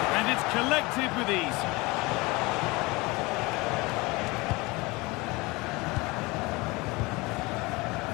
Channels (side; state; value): right; quieter; 23.9 dB